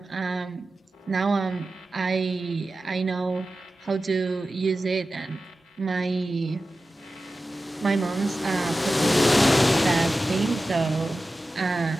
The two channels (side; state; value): both; normal; correlation 0.94